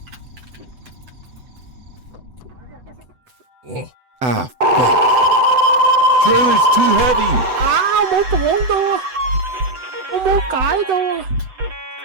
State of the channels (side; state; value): left; late; 7.9 ms